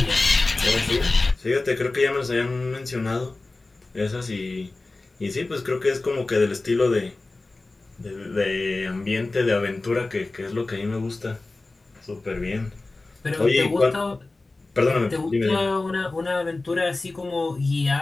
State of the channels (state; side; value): quieter; right; 3.2 dB